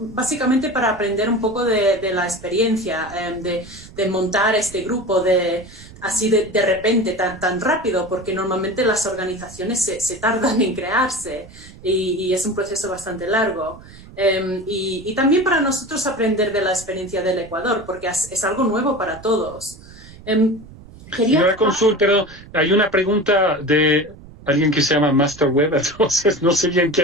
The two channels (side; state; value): right; noise; rumble, 19 dB below the sound